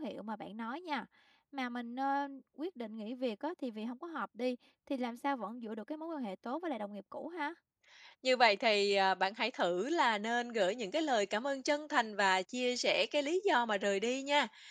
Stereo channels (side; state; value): both; identical; correlation 1.00